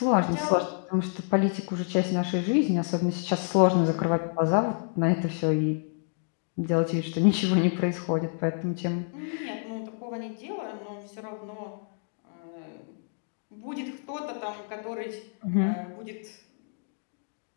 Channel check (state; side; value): silent; right; 59 dB below the other